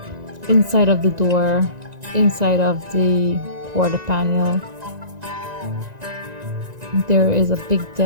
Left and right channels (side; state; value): left; late; 1.9 ms